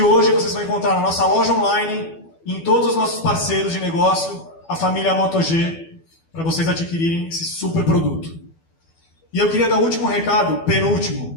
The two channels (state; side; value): late; right; 12 ms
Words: vocês vão encontrar na nossa loja online, em todos os nossos parceiros de negócio, a família Moto G, para vocês adquirirem esse super produto. E eu queria dar o último recado,